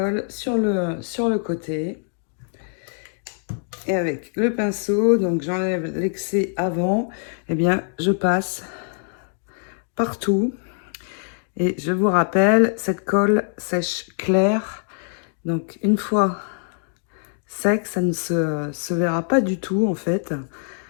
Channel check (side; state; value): right; silent; 59 dB below the other